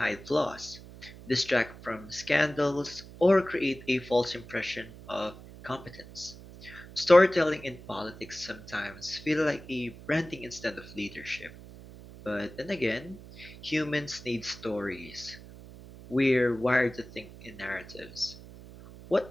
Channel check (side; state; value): right; noise; hum, 17 dB below the sound